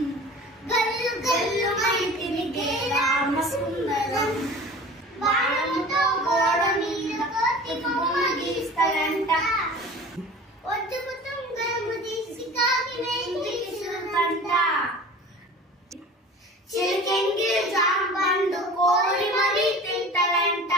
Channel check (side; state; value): both; normal; correlation 0.40